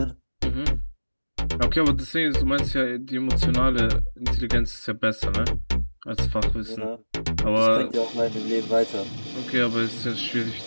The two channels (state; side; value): inverted; both; correlation -1.00